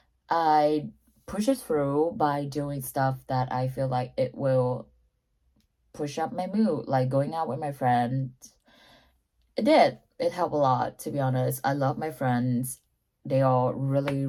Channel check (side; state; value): both; identical; correlation 1.00